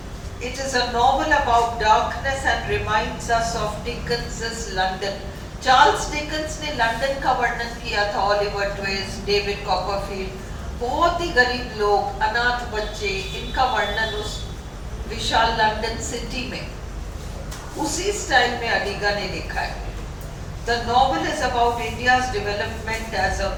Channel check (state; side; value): identical; both; correlation 1.00